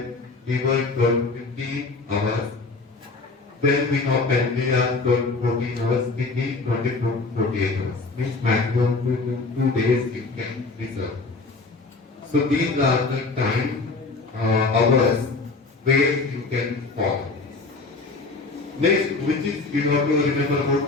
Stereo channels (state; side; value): quieter; right; 3.7 dB